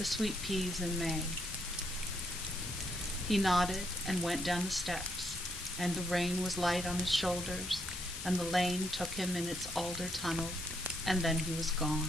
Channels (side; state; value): left; noise; hiss, 8 dB below the sound